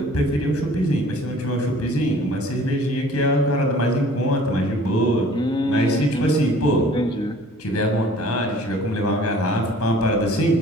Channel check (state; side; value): normal; both; correlation 0.51